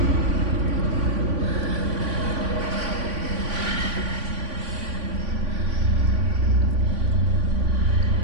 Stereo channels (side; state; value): left; late; 3.5 ms